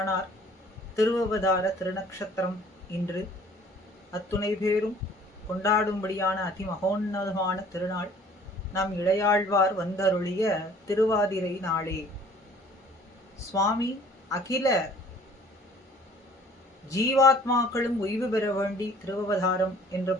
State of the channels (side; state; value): both; normal; correlation 0.53